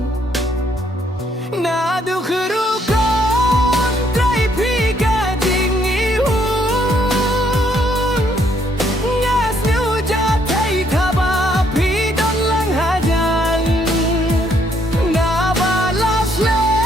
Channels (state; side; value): normal; both; correlation 0.70